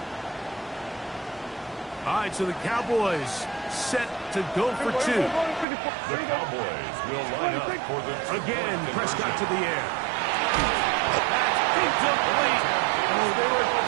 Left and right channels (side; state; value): left; drops out; at 5.7 s